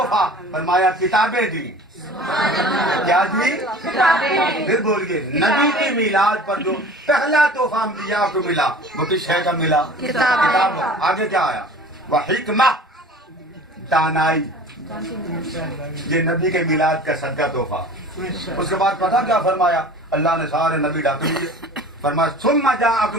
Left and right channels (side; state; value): both; normal; correlation 0.42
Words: فرمایا؟ کتابیں دی. کیا دی؟ پھر بولیے نبی کی میلاد پر جو پہلا تحفہ انبیاء کو ملا وہ کس شے کا ملا؟ کتاب. آگے کیا آیا؟ وہ حکمہ، دانائی. یہ نبی کے میلاد کا صدقہ تحفہ. اس کے بعد پتہ کیا فرمایا؟ اللہ نے سارے نبی ڈاک لیے. فرمایا ثم